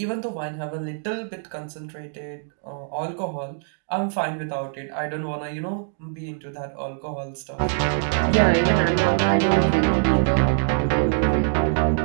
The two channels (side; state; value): left; silent; digital silence